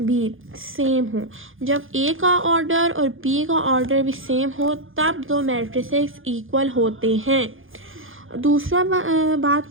सेम हो। जब ए का ऑर्डर और बी का ऑर्डर भी सेम हो तब 2 मैट्रिसेस इक्वल होते हैं। दूसरा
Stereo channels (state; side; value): late; left; 0.59 ms